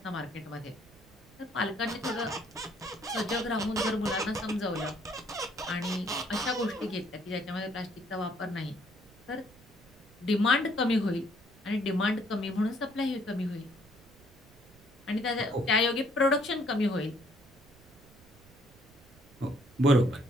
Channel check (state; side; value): noise; right; rumble, 25 dB below the sound